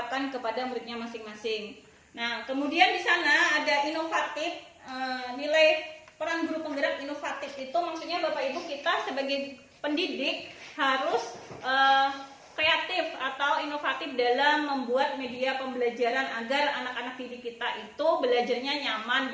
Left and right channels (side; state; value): both; identical; correlation 1.00